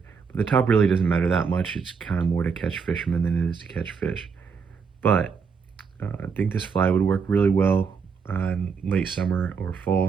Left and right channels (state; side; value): quieter; left; 5.8 dB